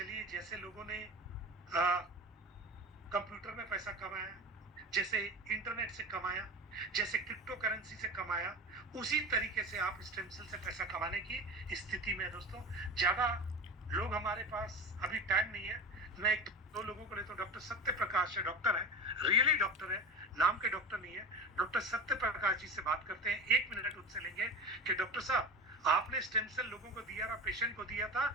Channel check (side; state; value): both; normal; correlation 0.30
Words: जैसे लोगों ने कंप्यूटर में पैसा कमाया, जैसे इंटरनेट से कमाया, जैसे क्रिप्टो करेंसी से कमाया, उसी तरीके से आप स्टेम सेल से पैसा कमाने की स्थिति में है। दोस्तों, ज्यादा लोग हमारे पास अभी टाइम नहीं है। मैं 1-2 लोगों को लेता हूँ। डॉक्टर सत्य प्रकाश है, डॉक्टर है, रियली डॉक्टर है, नाम के डॉक्टर नहीं है। डॉक्टर सत्य प्रकाश जी से बात करते हैं। 1 मिनट उनसे लेंगे कि डॉक्टर साहब, आपने स्टेम सेल लोगों को दिया था, पेशेंट को दिया था,